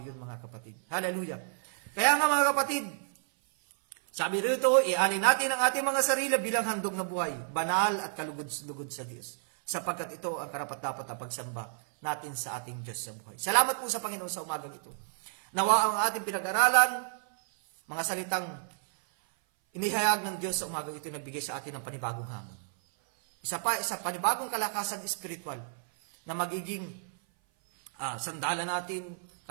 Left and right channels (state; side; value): silent; left; 56 dB below the other